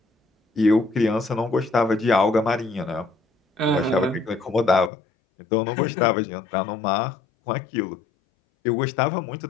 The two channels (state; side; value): drops out; right; at 4.9 s